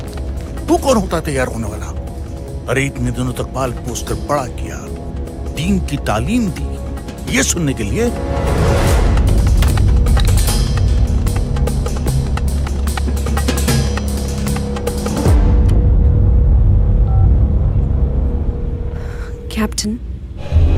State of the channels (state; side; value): identical; both; correlation 1.00